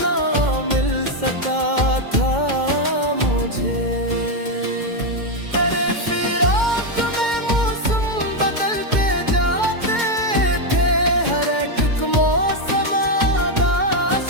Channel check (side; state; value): left; late; 2.1 ms